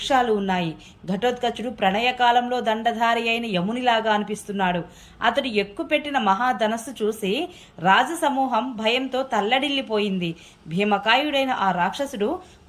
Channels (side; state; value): both; identical; correlation 1.00